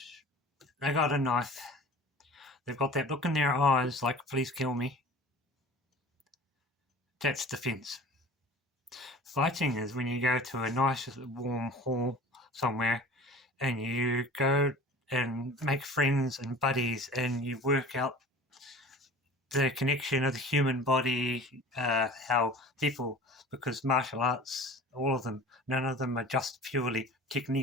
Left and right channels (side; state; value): both; normal; correlation 0.41